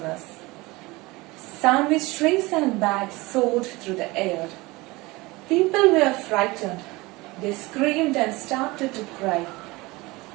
us. Sandwich trays and bags soared through the air. People were frightened. They screamed and started to cry.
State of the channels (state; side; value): quieter; left; 22.3 dB